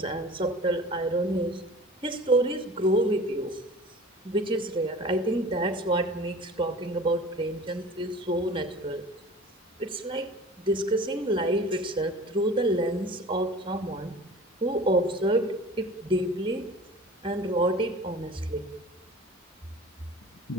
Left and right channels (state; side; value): normal; both; correlation 0.41